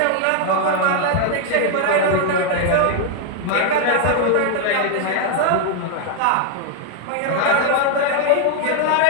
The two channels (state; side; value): different; both; correlation 0.00